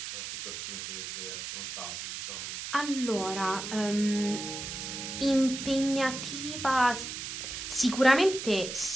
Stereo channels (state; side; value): noise; right; hiss, 7 dB below the sound